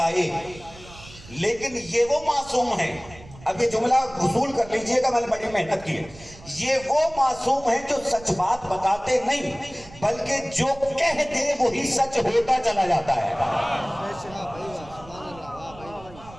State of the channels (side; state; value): right; noise; rumble, 20 dB below the sound